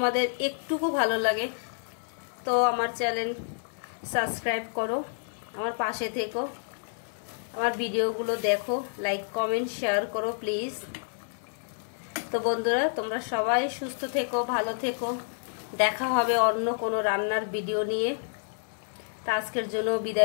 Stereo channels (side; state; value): right; silent; digital silence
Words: একটুকু ভালো লাগে তো আমার চ্যানেল সাবস্ক্রাইব করো, আমার পাশে থেকো, আমার ভিডিওগুলো দেখো, লাইক কমেন্ট শেয়ার করো প্লিজ। তো বন্ধুরা, তোমরা সবাই সুস্থ থেকো, ভালো থেকো। দেখা হবে অন্য কোনো রান্নার ভিডিও নিয়ে। তা আজকের জন্য